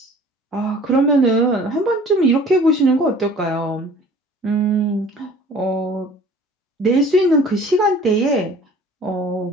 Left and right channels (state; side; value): normal; both; correlation 0.48